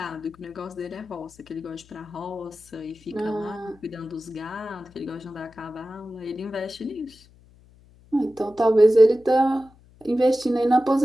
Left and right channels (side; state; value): left; noise; hum, 27 dB below the sound